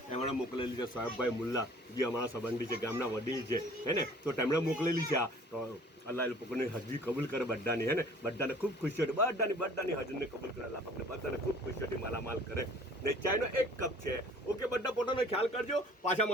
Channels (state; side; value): normal; both; correlation 0.51